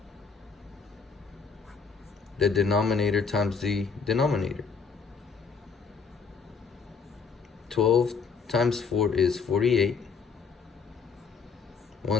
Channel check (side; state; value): right; quieter; 5.4 dB